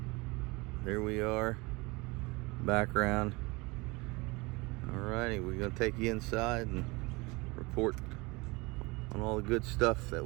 There we are. Background. Alrighty, we're gonna take you inside and report on all the good stuff that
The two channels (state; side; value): quieter; left; 24.9 dB